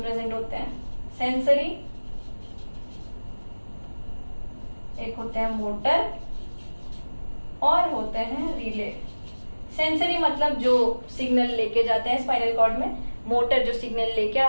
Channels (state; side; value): inverted; both; correlation -1.00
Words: प्रेजेंट होते हैं। सेंसरी, एक होते हैं मोटर, और होते हैं रिले। सेंसरी मतलब जो सिग्नल लेके जाते हैं स्पाइनल कॉर्ड में, मोटर जो सिग्नल लेके